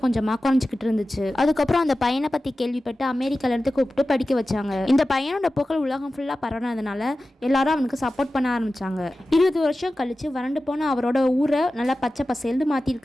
கொஞ்சமாக குறைஞ்சிக்கிட்டு இருந்துச்சு. அதுக்கப்புறம் அந்த பையனை பற்றி கேள்விப்பட்டு அமெரிக்காலேருந்து கூப்பிட்டு படிக்க வச்சாங்க. இந்த பையனோட புகழ் உலகம் ஃபுல்லாக பரவுனதுனால எல்லாரும் அவனுக்கு சப்போர்ட் பண்ண ஆரம்பிச்சாங்க. 20 வருஷம் கழிச்சு வறண்டு போன அவரோட ஊரை நல்லா பச்சை பசேல்னு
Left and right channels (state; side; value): normal; both; correlation 0.95